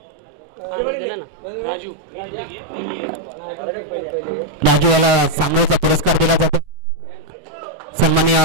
राजू याला सामनावीरचा पुरस्कार दिला जातो. सन्माननीय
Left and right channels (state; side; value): late; left; 7.8 ms